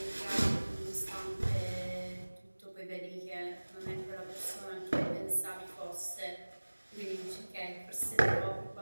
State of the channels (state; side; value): inverted; both; correlation -1.00